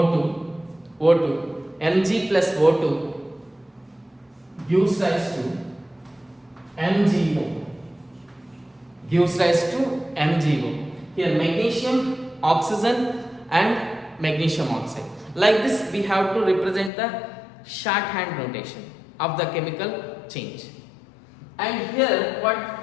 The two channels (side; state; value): right; drops out; at 16.9 s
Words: Mg plus O2 gives rise to MgO, Here magnesium, oxygen and magnesium oxide. Like this we have to represent the shorthand notation of the chemical change. And here